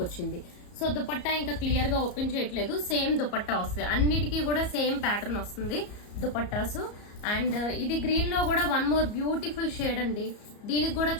వచ్చింది. సో దుపట్టా ఇంకా క్లియర్ గా ఓపెన్ చేయట్లేదు, సేమ్ దుపట్టా వస్తుంది. అన్నిటికీ కూడా సేమ్ ప్యాటర్న్ వస్తుంది దుపట్టాసు. అండ్ ఇది గ్రీన్ లో కూడా వన్ మోర్ బ్యూటిఫుల్ షేడ్ అండి. దీనికి కూడా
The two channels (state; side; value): late; right; 34 ms